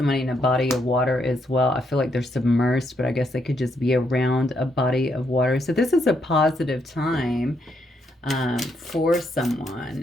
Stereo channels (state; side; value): normal; both; correlation 0.76